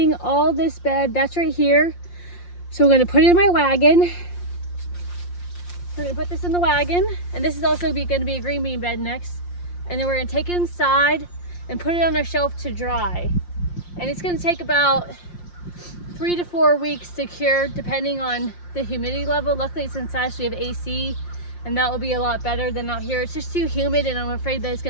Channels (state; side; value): late; right; 5.7 ms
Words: all this bed. That's right here. So we're gonna put it in my wagon. We're gonna put this in the wagon, and this is also gonna be a green bean bed next. And then we're gonna take it inside and put it on our shelf to dry. And it's gonna take about 3 to 4 weeks to cure, depending on the humidity level. Luckily it's inside, so we have AC, and that will be a lot better than out here. It's just too humid, and I'm afraid that it's